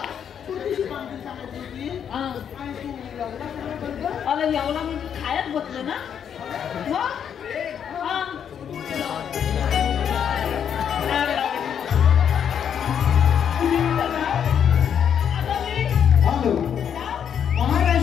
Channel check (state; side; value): quieter; right; 8.3 dB